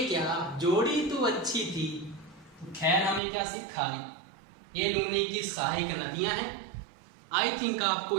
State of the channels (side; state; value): left; drops out; at 3.2 s